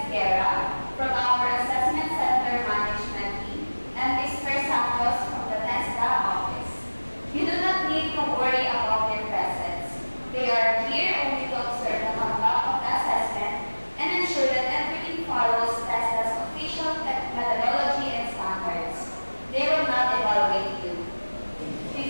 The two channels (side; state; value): both; inverted; correlation -1.00